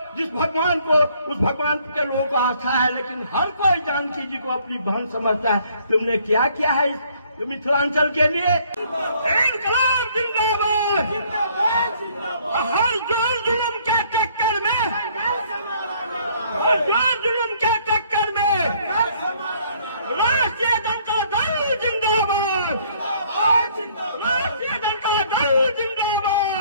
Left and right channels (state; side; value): inverted; both; correlation -0.62